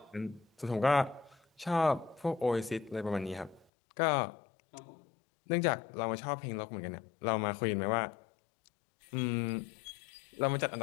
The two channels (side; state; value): right; drops out; at 3.7 s